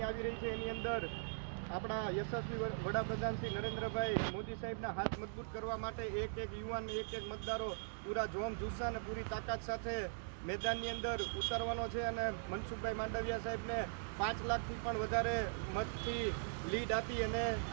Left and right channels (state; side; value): silent; left; digital silence